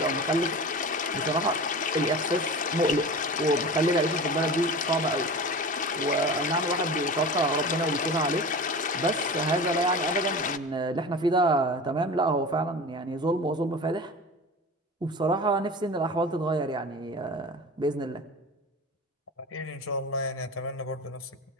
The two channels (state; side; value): normal; both; correlation 0.33